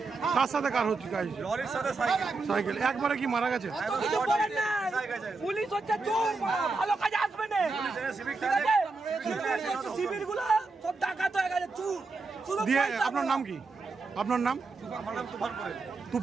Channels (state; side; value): quieter; left; 3.8 dB